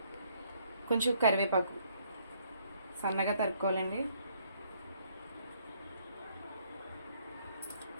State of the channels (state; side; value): inverted; both; correlation -0.67